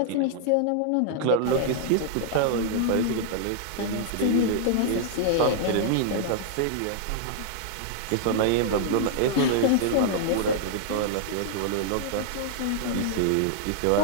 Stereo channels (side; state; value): both; different; correlation -0.01